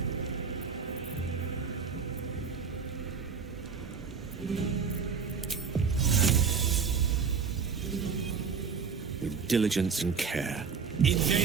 With diligence and care.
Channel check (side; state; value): left; quieter; 5.9 dB